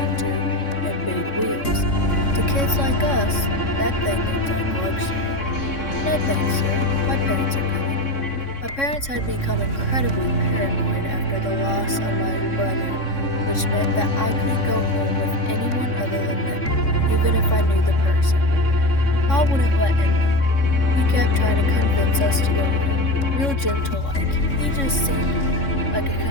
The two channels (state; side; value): late; right; 3.6 ms